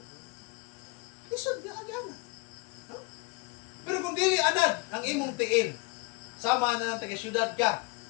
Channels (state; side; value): quieter; right; 25.3 dB